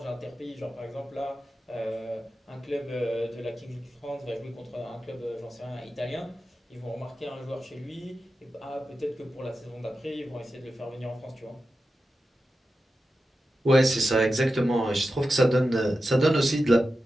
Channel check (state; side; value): normal; both; correlation 0.92